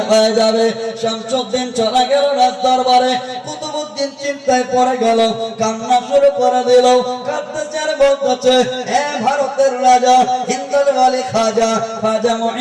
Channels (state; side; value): identical; both; correlation 1.00